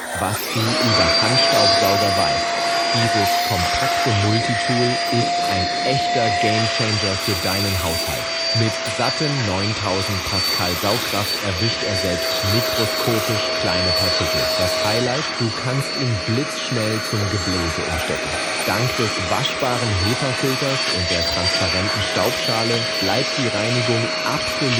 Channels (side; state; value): both; identical; correlation 1.00